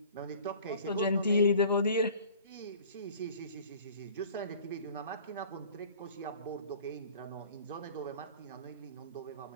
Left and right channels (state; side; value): inverted; both; correlation -0.47